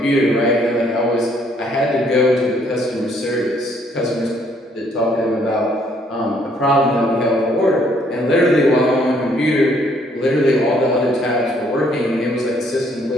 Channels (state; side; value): normal; both; correlation 0.66